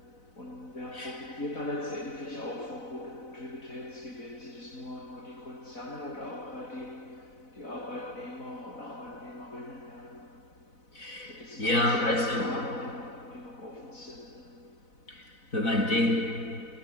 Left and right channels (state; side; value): late; right; 4.0 ms